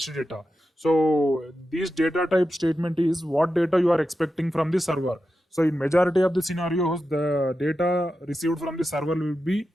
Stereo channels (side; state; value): both; normal; correlation 0.90